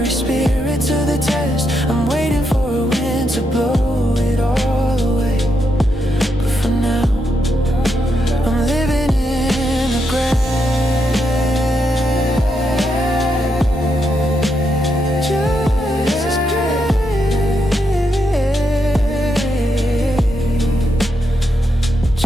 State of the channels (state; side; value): normal; both; correlation 0.81